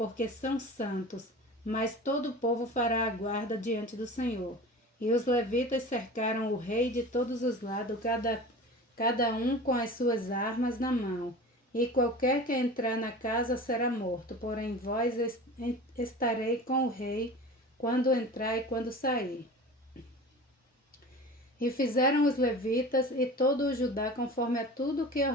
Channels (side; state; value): both; normal; correlation 0.36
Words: são santos, mas todo o povo fará a guarda diante do Senhor. E os levitas cercaram o rei de todos os lados, cada um com as suas armas na mão. E qualquer que entrar na casa será morto, porém vós estarei com o rei quando entrar e quando sair. E fizeram os levitas e todo o Judá conforme a tudo que